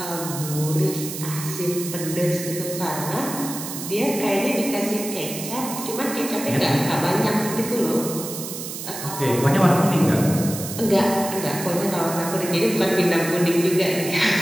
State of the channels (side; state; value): right; noise; hiss, 8 dB below the sound